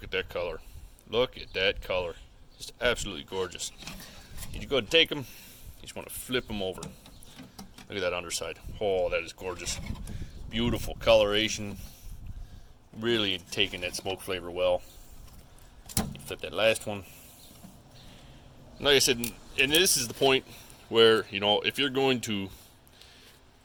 at that color. Look at that color. Just absolutely gorgeous. You go ahead and take them. You just want to flip them over. Look at that underside. Oh, that is gorgeous. Beautiful coloration. Really taking that smoke flavor well. You flip that last one. Like I said, and this is the point where, you know, if you're going to...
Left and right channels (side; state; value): both; identical; correlation 1.00